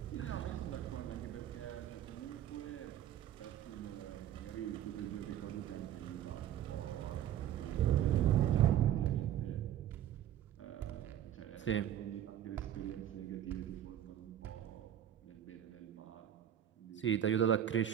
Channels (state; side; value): quieter; left; 10.8 dB